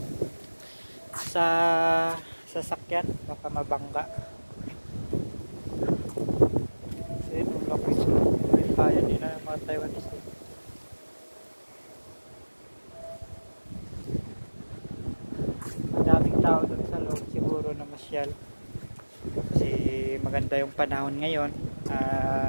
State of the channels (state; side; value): inverted; both; correlation -1.00